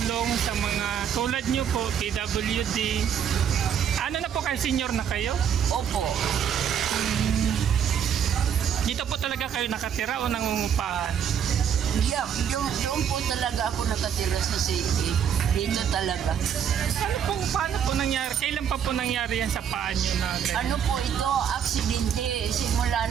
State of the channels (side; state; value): left; quieter; 8.4 dB